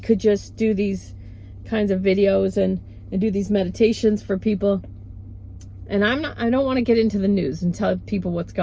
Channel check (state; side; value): identical; both; correlation 1.00